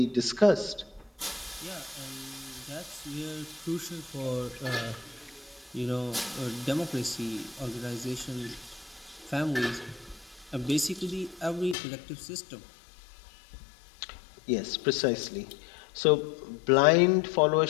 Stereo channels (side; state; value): right; drops out; at 11.8 s